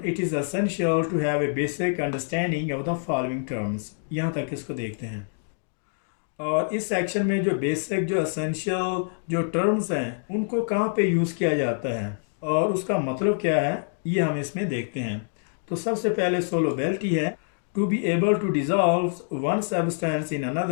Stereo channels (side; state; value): right; silent; digital silence